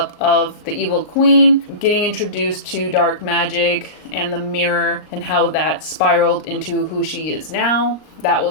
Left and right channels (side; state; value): right; late; 38 ms